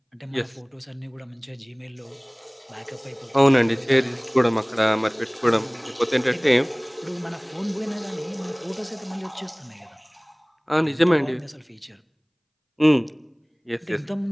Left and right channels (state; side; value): identical; both; correlation 1.00